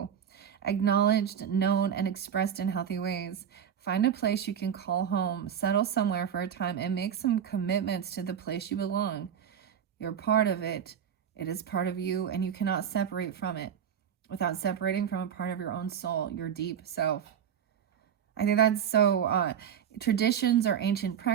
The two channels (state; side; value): quieter; left; 8.5 dB